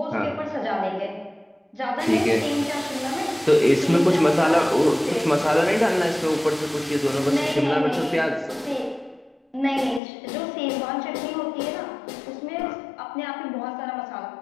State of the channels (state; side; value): drops out; right; at 10.0 s